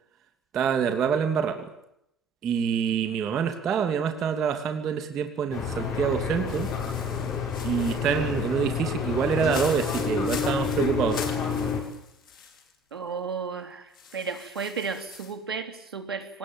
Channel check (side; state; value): left; quieter; 3.1 dB